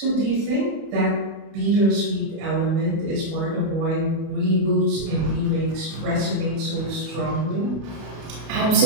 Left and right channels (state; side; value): late; left; 31 ms